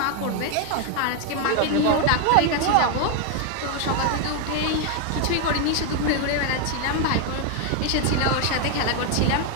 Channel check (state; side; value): different; both; correlation 0.01